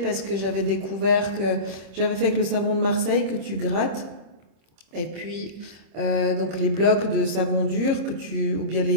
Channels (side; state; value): left; late; 25 ms